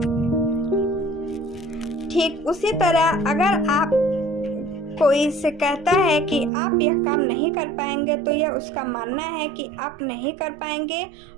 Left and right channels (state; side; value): drops out; left; at 6.5 s